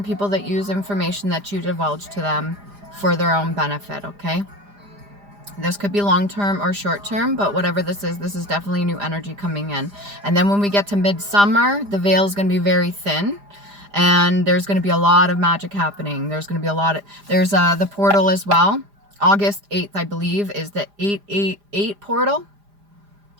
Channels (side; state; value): left; late; 4.9 ms